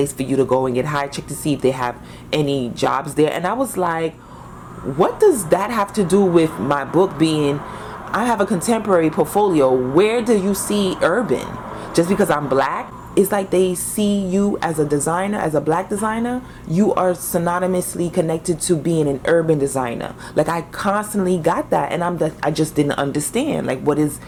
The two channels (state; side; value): identical; both; correlation 1.00